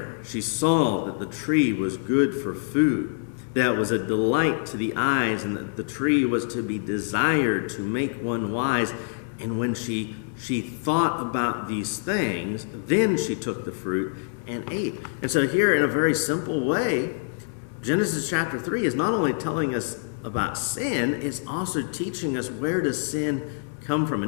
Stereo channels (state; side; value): silent; right; 61 dB below the other